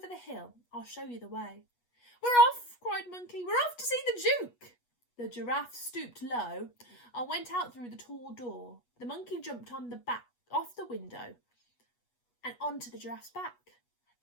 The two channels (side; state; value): right; late; 8.3 ms